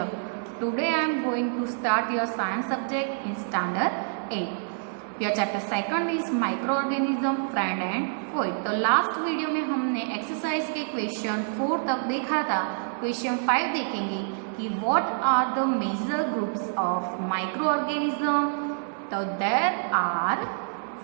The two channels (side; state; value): left; silent; 59 dB below the other